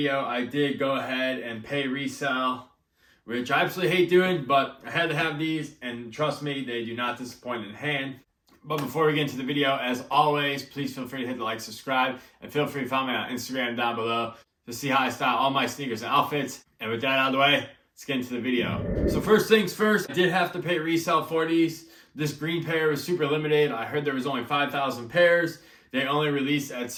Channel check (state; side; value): identical; both; correlation 1.00